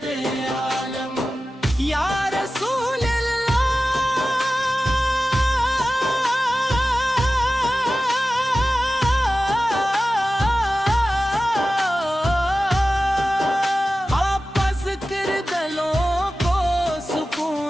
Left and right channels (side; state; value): both; normal; correlation 0.95